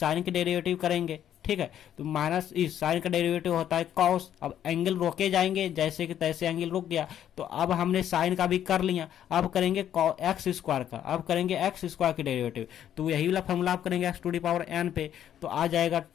की डेरिवेटिव करेंगे, ठीक है। तो माइनस इस साइन का डेरिवेटिव होता है कॉस। अब एंगल रोके जाएंगे, जैसे कि तैसे एंगल रुक गया। तो अब हमने साइन का भी कर लिया, अब करेंगे एक्स स्क्वायर का, अब करेंगे एक्स स्क्वायर की डेरिवेटिव। तो यही वाला फॉर्मूला आप करेंगे x to the power n पे, तो आ जाएगा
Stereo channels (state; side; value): quieter; right; 10.4 dB